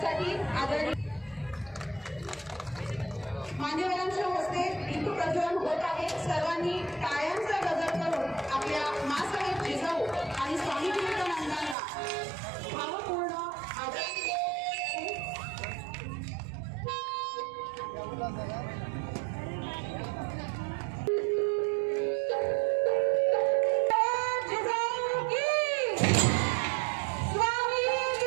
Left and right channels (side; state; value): left; drops out; at 11.8 s